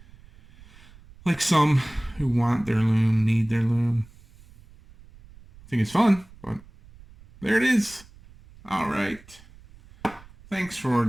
Like some who want their loom, need their loom. I think it's fun, but there it is. All right. Thanks for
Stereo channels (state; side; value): noise; right; rumble, 23 dB below the sound